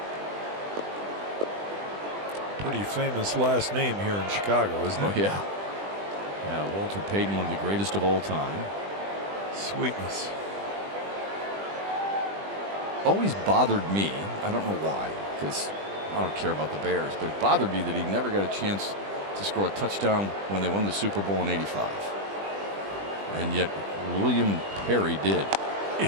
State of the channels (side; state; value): left; late; 20 ms